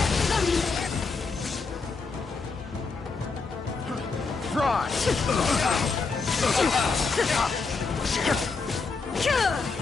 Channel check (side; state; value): right; quieter; 4.4 dB